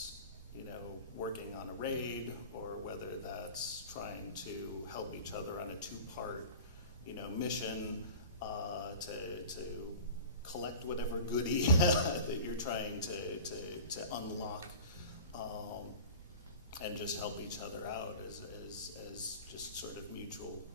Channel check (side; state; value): both; inverted; correlation -0.37